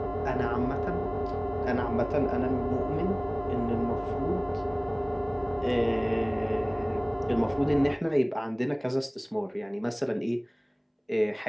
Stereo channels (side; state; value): both; identical; correlation 1.00